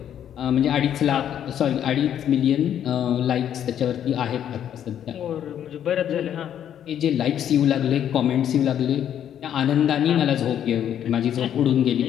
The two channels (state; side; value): quieter; right; 9.9 dB